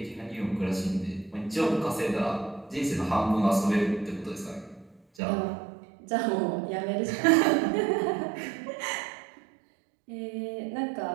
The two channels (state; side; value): drops out; left; at 5.0 s